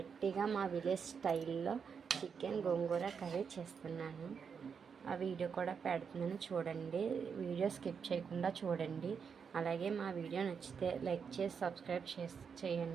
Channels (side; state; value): left; quieter; 6.4 dB